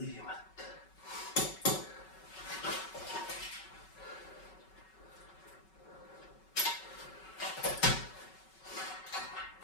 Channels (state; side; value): late; right; 5.3 ms